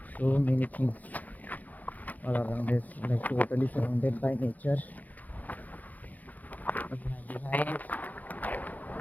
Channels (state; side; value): late; right; 0.080 ms